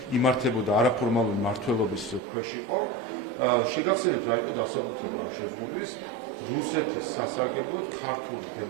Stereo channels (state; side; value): drops out; left; at 2.2 s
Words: იმართებოდა არაფორმალური მმართველობის ქვეშ იყო. შეგახსენებთ რა იყო დასაბუთება ამ შეზღუდვის რუსეთის სასარგებლოდ ქართული